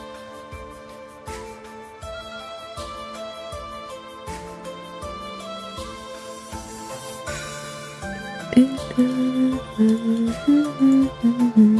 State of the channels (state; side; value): identical; both; correlation 1.00